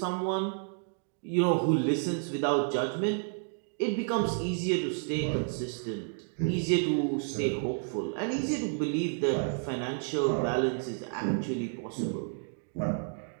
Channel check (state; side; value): silent; left; 57 dB below the other